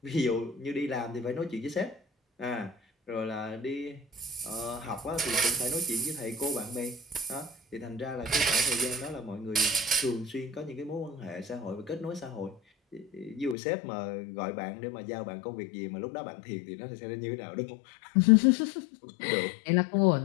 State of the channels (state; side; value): drops out; right; at 13.6 s